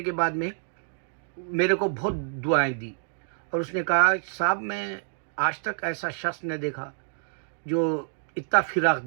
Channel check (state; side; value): silent; left; digital silence